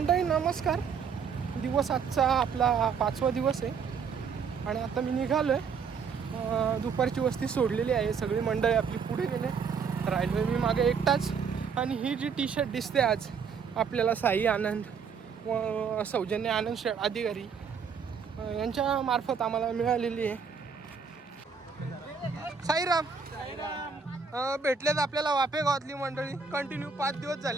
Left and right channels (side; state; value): left; quieter; 6.0 dB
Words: नमस्कार. दिवस आजचा आपला 5वा दिवस आहे आणि आता मी निघालोय. दुपारची वस्ती सोडलेली आहे, सगळी मंडळी आपली पुढे गेले, राहिलोय मी मागे एकटाच. आणि ही जी टी-शर्ट दिसते आज आपल्याला साई आनंद व सौजन्य आनंद अधिकारी यांच्या मार्फत आम्हाला मिळालेली आहे. साईराम भेटलेत आपल्याला वाफे गावातली मंडळी. कंटिन्यू 5 दिवस